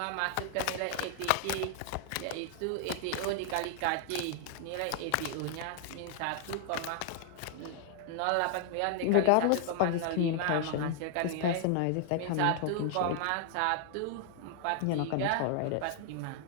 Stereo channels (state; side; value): different; both; correlation 0.00